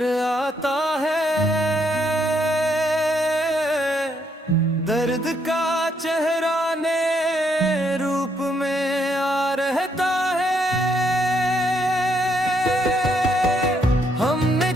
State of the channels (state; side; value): normal; both; correlation 0.74